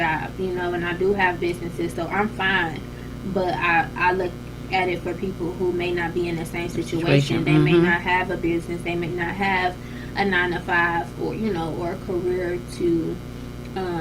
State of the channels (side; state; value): both; identical; correlation 1.00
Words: and I do have businesses, so I'm fine. But I look at it for people who may not be in the same situation. They may not have a business. They may not have a 9 to 5 or, or a career to